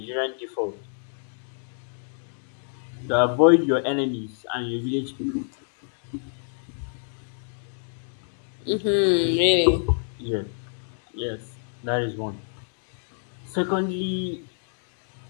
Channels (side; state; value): right; silent; digital silence